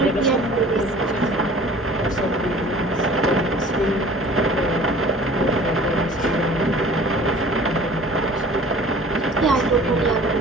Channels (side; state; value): both; normal; correlation 0.47